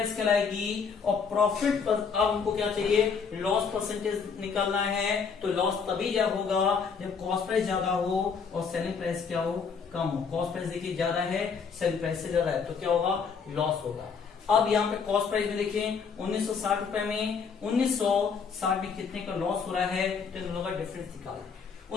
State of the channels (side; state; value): right; quieter; 5.9 dB